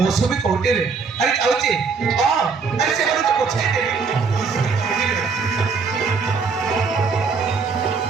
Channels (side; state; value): left; quieter; 5.1 dB